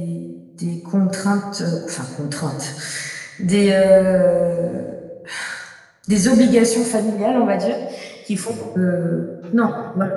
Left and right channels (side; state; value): both; identical; correlation 1.00